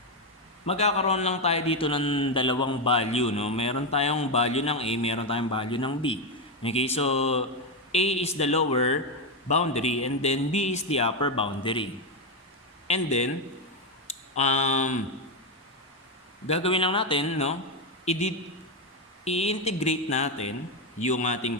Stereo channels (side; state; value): both; normal; correlation 0.07